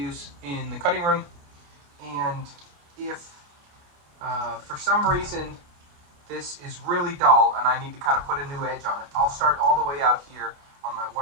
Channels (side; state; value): left; late; 29 ms